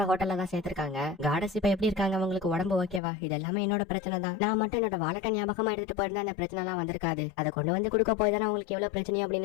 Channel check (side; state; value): right; drops out; at 3.0 s